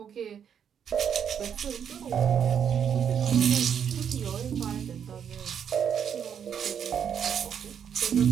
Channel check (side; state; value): left; quieter; 8.1 dB